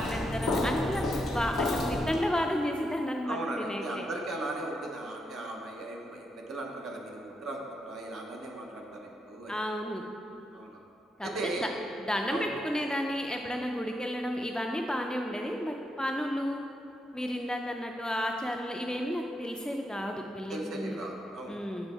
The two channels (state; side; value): normal; both; correlation 0.81